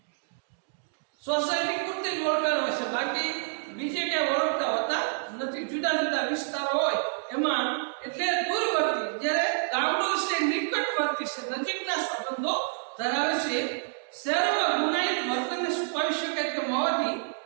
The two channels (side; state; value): left; silent; digital silence